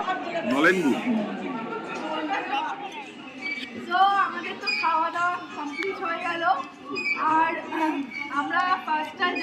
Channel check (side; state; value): both; identical; correlation 1.00